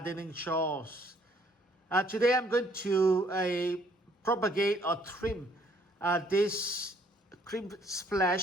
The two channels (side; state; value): both; normal; correlation 0.63